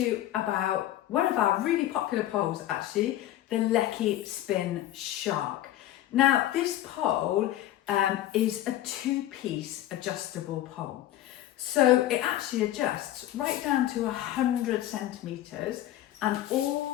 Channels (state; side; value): quieter; right; 13.4 dB